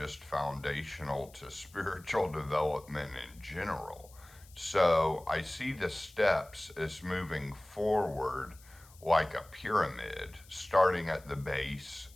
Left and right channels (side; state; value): left; noise; hiss, 24 dB below the sound